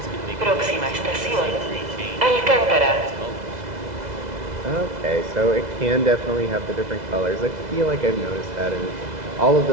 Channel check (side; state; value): left; late; 2.0 ms